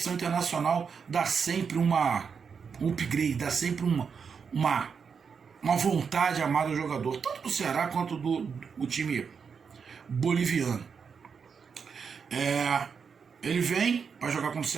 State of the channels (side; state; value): left; quieter; 6.1 dB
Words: internacional dá sempre um upgrade, dá sempre uma vontade amada do jogador, tanto do Ceará quanto do time boliviano. Ele vem para jogar com o